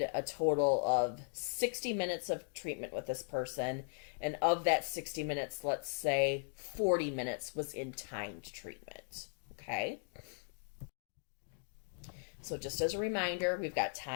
a total of 60 minutes of treatment with this person, and of that 60 minutes, let's say 40 minutes was in timed treatment, okay? So just as a reminder, we've got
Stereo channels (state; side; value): silent; right; digital silence